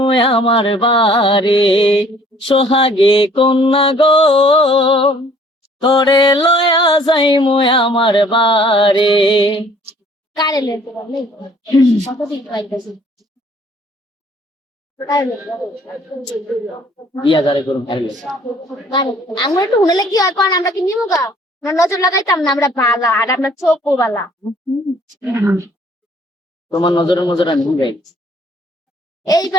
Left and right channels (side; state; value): both; normal; correlation 0.58